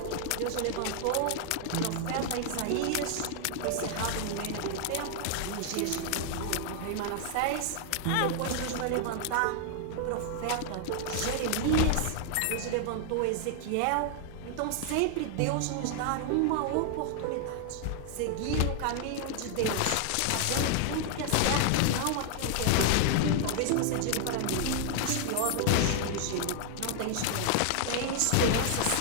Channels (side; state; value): both; different; correlation 0.00